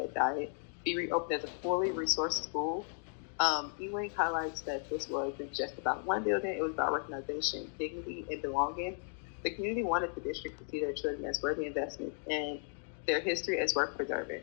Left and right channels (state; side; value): silent; right; 54 dB below the other